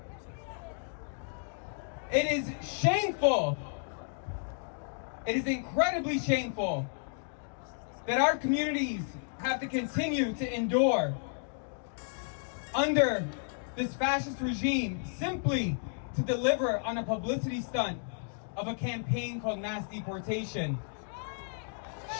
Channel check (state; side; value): silent; right; digital silence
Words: It is shameful. It is incredibly shameful that our communities have to continue to endure under this fascist regime simply to deliver on a publicity stunt of a campaign called mass deportation.